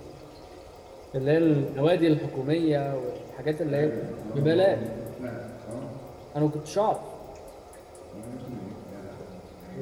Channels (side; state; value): both; identical; correlation 1.00